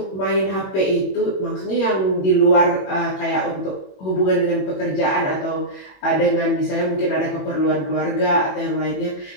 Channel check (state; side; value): late; right; 21 ms